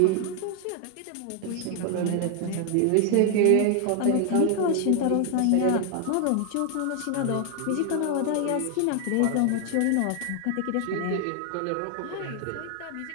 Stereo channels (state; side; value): different; both; correlation 0.00